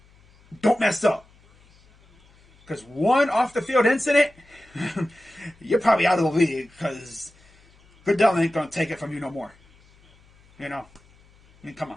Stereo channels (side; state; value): left; noise; hum, 30 dB below the sound